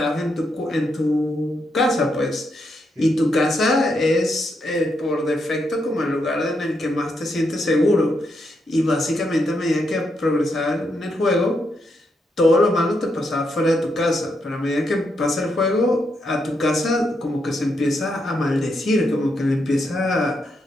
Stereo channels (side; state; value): both; normal; correlation 0.80